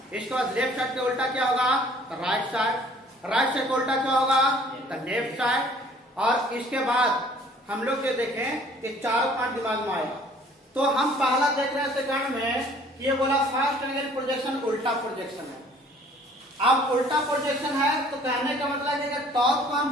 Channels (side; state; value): both; normal; correlation 0.55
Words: इसके बाद लेफ्ट साइड का उल्टा क्या होगा राइट साइड का उल्टा क्या होगा लेफ्ट साइड। और इसके बाद हम लोग जो देखें ये चारों पॉइंट दिमाग में आएगा। तो हम पहला देख रहे हैं सेकंड में ये बोला फर्स्ट एंगल प्रोजेक्शन उल्टा प्रोजेक्शन है। अब उल्टा प्रोजेक्शन है तो कहने का मतलब है कि टॉप को हम